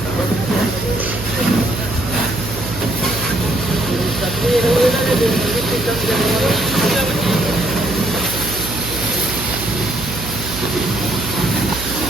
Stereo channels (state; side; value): noise; right; hum, 8 dB below the sound